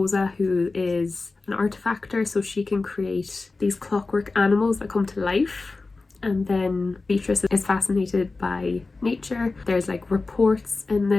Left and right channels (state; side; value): quieter; right; 3.7 dB